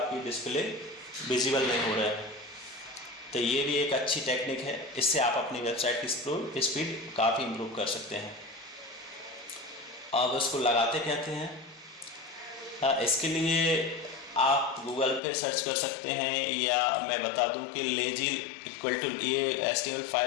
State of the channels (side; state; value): right; drops out; at 15.2 s